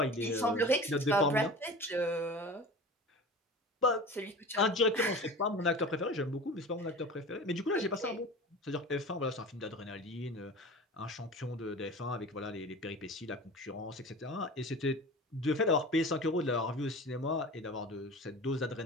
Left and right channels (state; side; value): normal; both; correlation 0.35